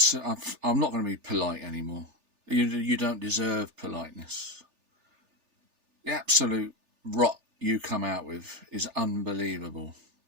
I'm not going to be polite anymore. You don't deserve politeness. The absolute rot you come out with is unbelievable.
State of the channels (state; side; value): late; left; 3.4 ms